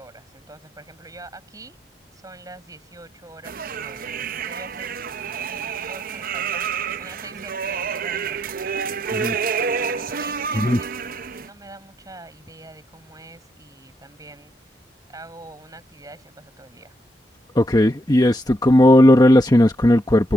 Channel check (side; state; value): both; normal; correlation 0.78